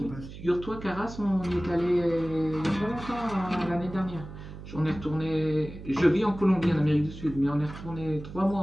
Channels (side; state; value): right; noise; hum, 13 dB below the sound